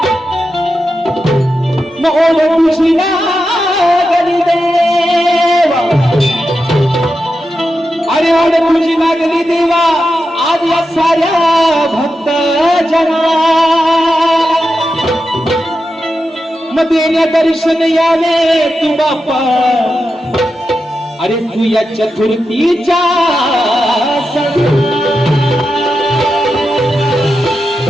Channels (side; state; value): both; normal; correlation 0.89